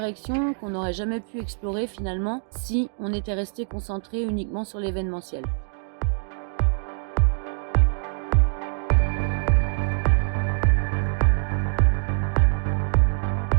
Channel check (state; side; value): silent; left; digital silence